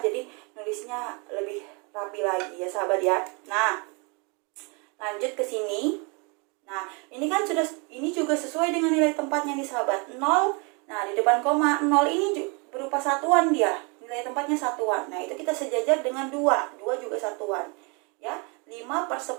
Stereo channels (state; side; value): quieter; left; 32.0 dB